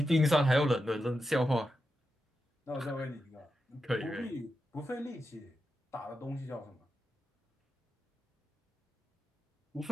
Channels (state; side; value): normal; both; correlation 0.88